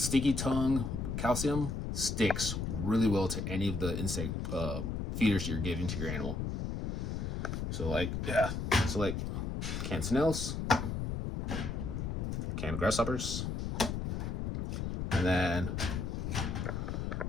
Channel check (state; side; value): noise; left; rumble, 2 dB below the sound